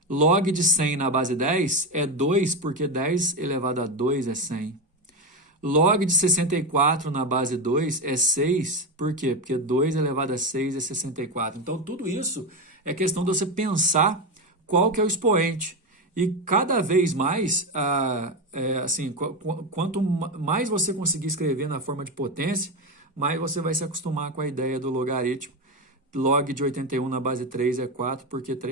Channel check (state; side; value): normal; both; correlation 0.14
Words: Log de 100 na base 10 é 2, porque 10 elevado a 2 é 100. Log de 64 na base 2 é 6, por quê? Porque 2 elevado a 6 é 64. Então, tudo isso é questão de você pensar qual que é o expoente. E cada vez mais, quanto mais você conseguir escrever na forma de potência, mais você vai se acostumar com a ideia do logaritmo. Log de 81 na base 3 é 4, porque